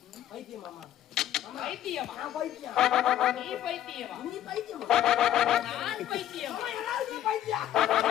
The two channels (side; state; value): right; quieter; 11.8 dB